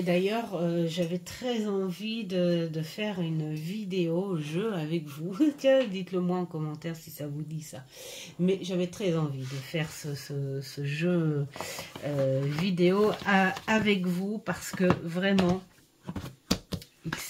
d'ailleurs, j'avais très envie de faire une vidéo jeu avec vous. Tiens, dites-le moi en commentaire si ça vous dit ça. Mais j'avais très envie de faire ce jeu vidéo avec vous parce que vraiment, il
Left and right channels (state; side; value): identical; both; correlation 1.00